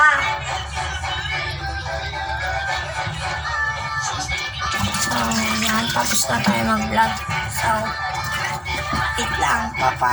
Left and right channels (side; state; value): both; identical; correlation 1.00